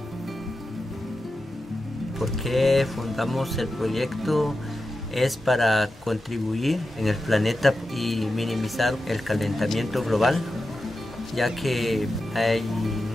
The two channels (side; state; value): both; normal; correlation 0.91